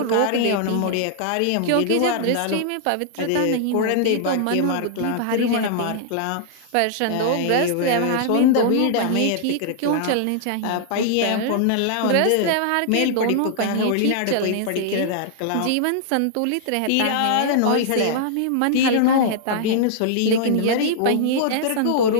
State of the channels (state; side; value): different; both; correlation -0.01